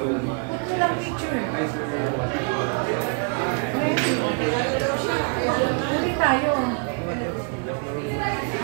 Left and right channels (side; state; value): left; quieter; 38.8 dB